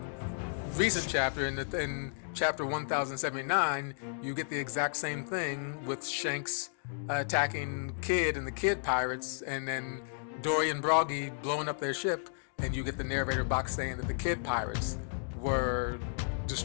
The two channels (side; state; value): right; silent; digital silence